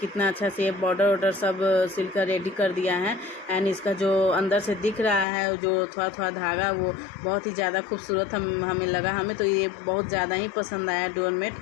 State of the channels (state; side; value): drops out; right; at 5.2 s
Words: अच्छा से बॉर्डर वॉर्डर सब सिलकर रेडी कर दिया है। एंड इसका जो अंदर से दिख रहा है जो थोड़ा थोड़ा धागा, वो बहुत ही ज़्यादा खूबसूरत हमें लगा। हमें तो ये बहुत ज़्यादा ही पसंद आया डोरमेट।